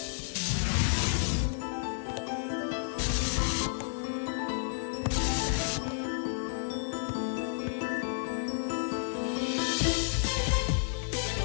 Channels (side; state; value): right; silent; 55 dB below the other